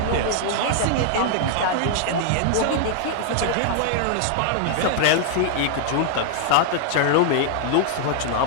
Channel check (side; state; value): both; different; correlation -0.01